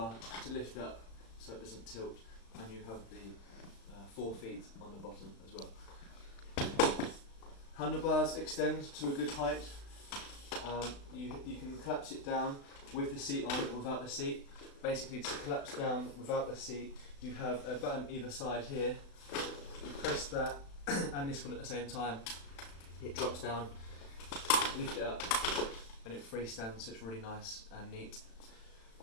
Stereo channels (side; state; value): right; late; 36 ms